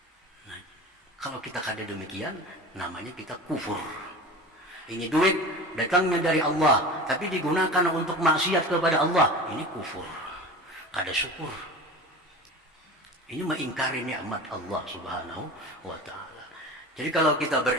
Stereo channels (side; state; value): both; normal; correlation 0.34